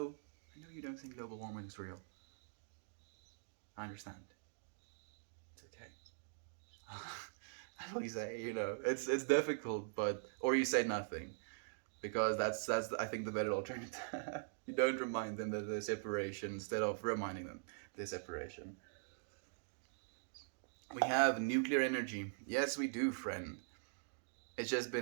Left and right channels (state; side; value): silent; left; digital silence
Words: you don't think global warming is real. I understand. It's okay. That's what you say, it's difficult, but or you say nothing, because that's I think the better alternative. You don't remind them that there's separation instead of reminding them there's separation. We have nuclear energy. Yes, we do, friend. It's just